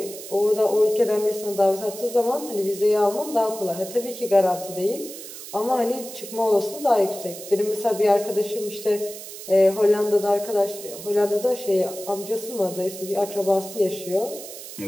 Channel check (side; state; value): right; noise; hiss, 12 dB below the sound